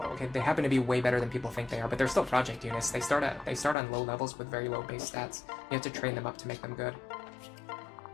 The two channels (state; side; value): drops out; right; at 3.8 s